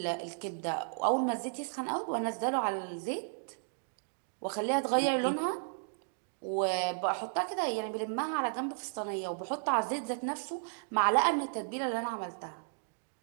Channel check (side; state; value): left; silent; digital silence